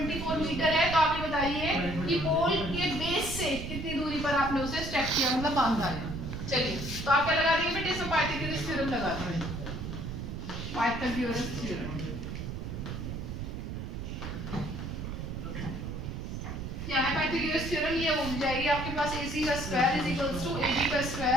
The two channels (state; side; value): noise; right; rumble, 6 dB below the sound